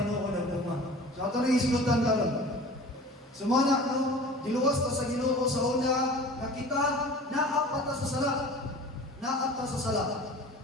tinuod ang bunga. So ito rin islutan ka lang. Sumana, no? Diluwas ta sa Ginoo sa una, nakita, naapat ta sa sala. Naat ta sa sala.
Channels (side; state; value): both; normal; correlation 0.41